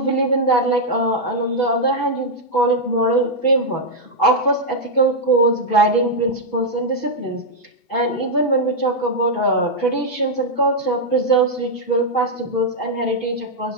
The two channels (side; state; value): right; late; 8.0 ms